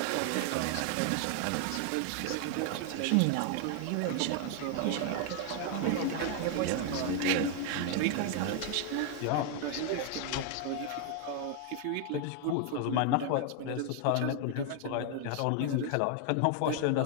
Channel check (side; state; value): both; different; correlation 0.00